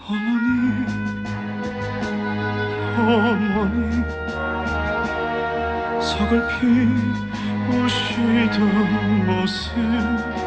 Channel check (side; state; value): both; identical; correlation 1.00